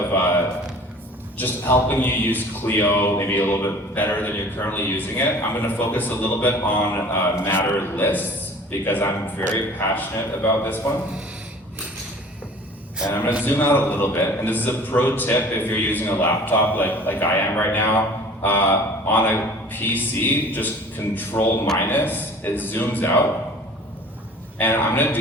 just helping you use Clio maybe a little bit better than you're currently using it. I'm going to focus a little bit on matter lists because I'm very passionate about this one. And I'm going to zoom out a little bit. And this is a pro tip if you're using a laptop like I am right now. On a PC, just Control minus, it zooms out. And I'm going to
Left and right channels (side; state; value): both; normal; correlation 0.46